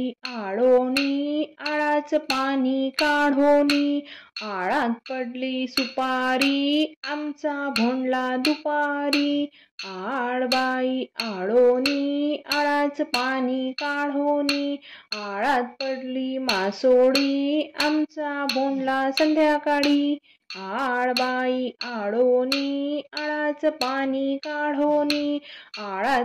आळोनी आळाच पाणी काढोनी, आळात पडली सुपारी आमचा भोंडला दुपारी। आडबाई आळोनी आळाच पाणी काढोनी, आळात पडली मासोळी आमचा भोंडला संध्याकाळी। आडबाई आळोनी आळाच पाणी काढोनी, आळात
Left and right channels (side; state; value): both; identical; correlation 1.00